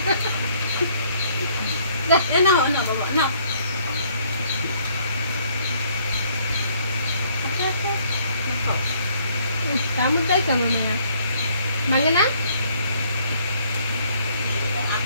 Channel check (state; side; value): inverted; both; correlation -0.64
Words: না বাবা না কামড়টাই কেন না ভাঙে না